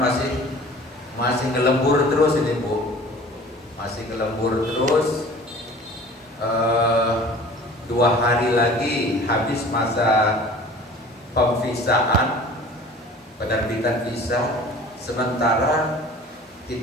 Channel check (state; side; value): normal; both; correlation 0.45